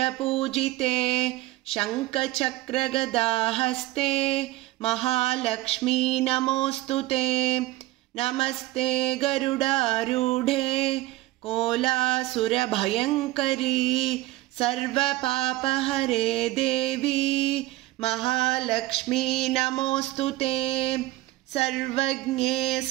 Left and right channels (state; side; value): quieter; left; 18.1 dB